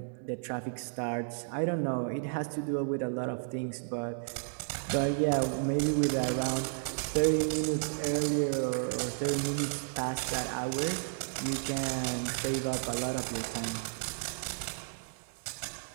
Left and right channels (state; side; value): silent; left; 56 dB below the other